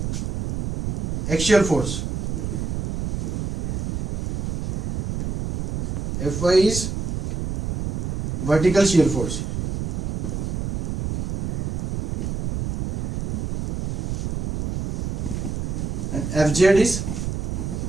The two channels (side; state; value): right; noise; rumble, 2 dB below the sound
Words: axial force, Fy is vertical shear force, and Fz is